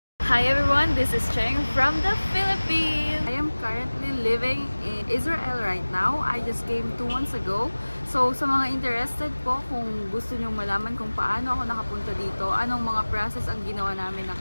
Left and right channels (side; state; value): both; inverted; correlation -1.00